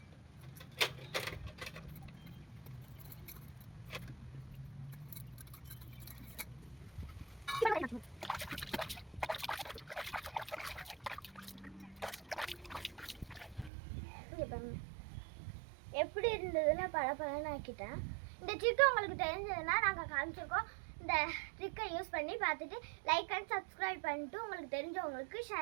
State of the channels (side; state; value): left; drops out; at 13.7 s